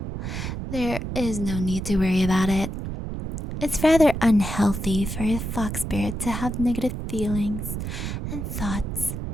there is no need to worry about it. It's rather unhealthy for a fox spirit to have negative feelings and thoughts.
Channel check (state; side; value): noise; right; rumble, 5 dB below the sound